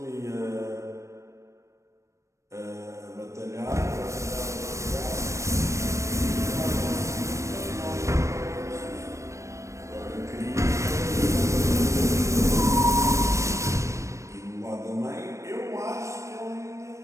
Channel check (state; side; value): late; left; 0.15 ms